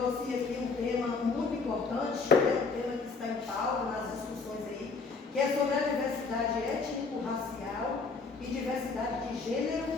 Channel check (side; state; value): right; quieter; 4.4 dB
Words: aqui um tema muito importante, um tema que está em pauta nas discussões aí, que é sobre a diversidade étnico-racial e diversidade de gênero